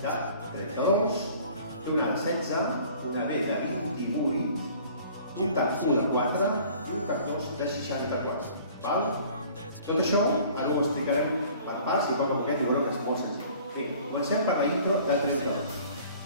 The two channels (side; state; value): both; inverted; correlation -0.50